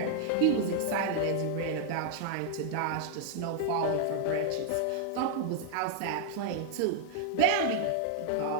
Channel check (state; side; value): different; both; correlation -0.01